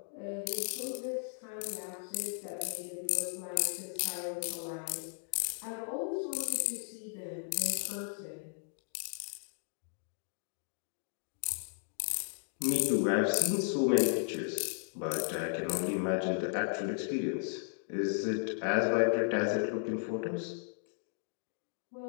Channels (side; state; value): right; silent; digital silence